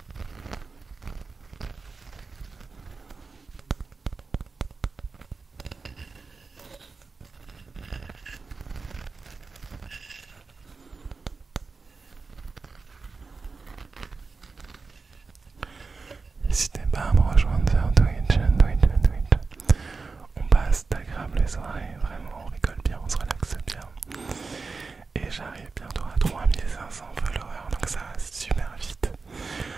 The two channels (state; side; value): quieter; left; 4.3 dB